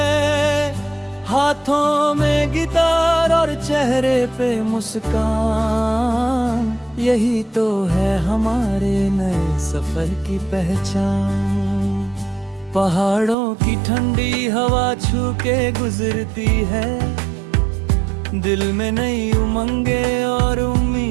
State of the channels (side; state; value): left; drops out; at 13.4 s